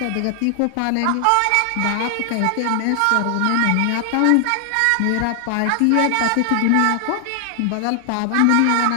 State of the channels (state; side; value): different; both; correlation 0.00